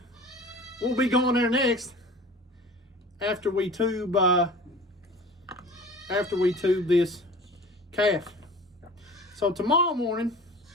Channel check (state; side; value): normal; both; correlation 0.41